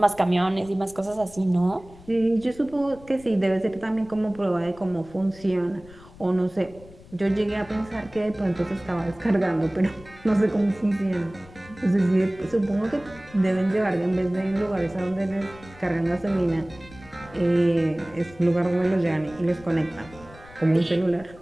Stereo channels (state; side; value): noise; left; rumble, 21 dB below the sound